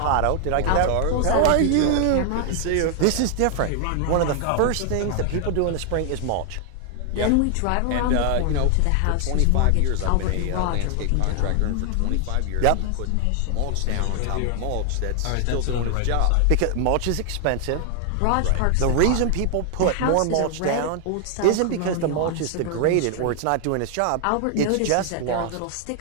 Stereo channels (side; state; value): both; different; correlation 0.00